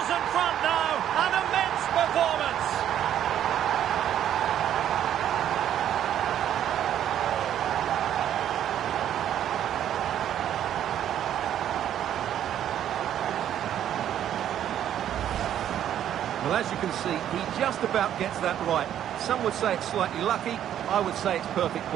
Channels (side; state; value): left; quieter; 10.6 dB